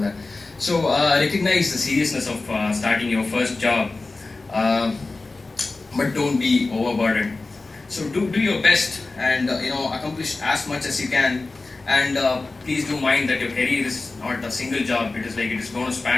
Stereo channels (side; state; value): right; quieter; 3.5 dB